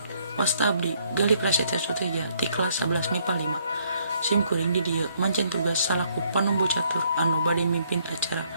wasta abdi gali prasetya suteja ti kelas 11 MIPA 5. Sim kuring di dieu mancen tugas salaku panumbu catur anu bade mimpin acara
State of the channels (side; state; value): both; inverted; correlation -0.68